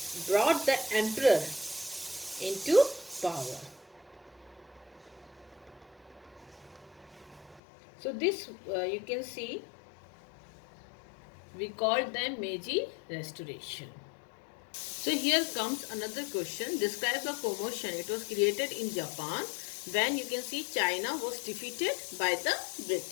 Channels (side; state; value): right; drops out; at 7.6 s